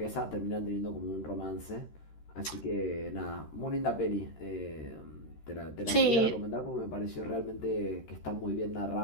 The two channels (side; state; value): right; late; 13 ms